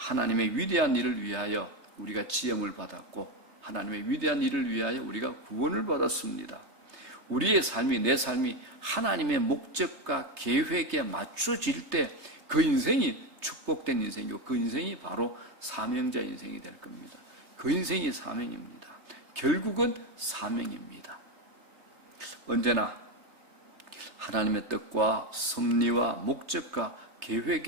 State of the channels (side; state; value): left; late; 3.2 ms